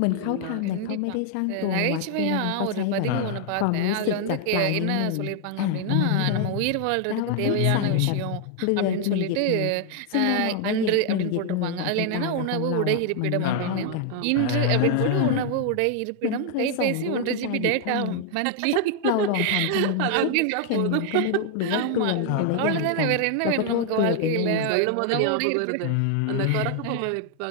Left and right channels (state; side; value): different; both; correlation 0.00